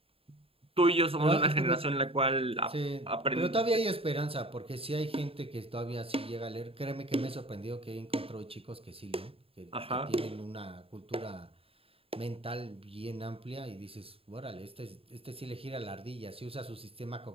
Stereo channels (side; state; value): left; late; 0.27 ms